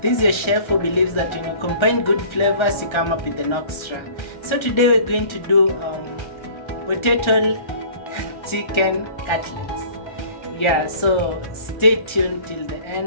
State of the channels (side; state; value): right; late; 1.3 ms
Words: is your chef who believes that when you combine good flavors you come up with an extra. So today we're going to do potato chicken cutlets. Yeah, so stay tuned till the